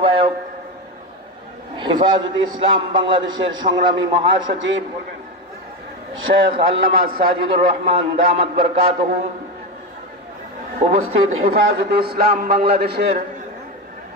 হেফাজতে ইসলাম বাংলাদেশের সংগ্রামী মহাসচিব শেখ আল্লামা সাজিদুর রহমান দামাত বরকাতুহু, উপস্থিত হেফাজতে ইসলাম বাংলাদেশের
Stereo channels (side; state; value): both; normal; correlation 0.15